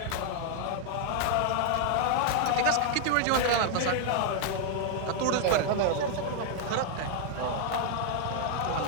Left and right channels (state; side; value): different; both; correlation 0.00